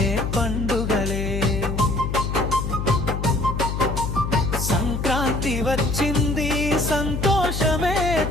పండుగలే. సంక్రాంతి వచ్చింది, సంతోషమే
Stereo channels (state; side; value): noise; left; hum, 3 dB below the sound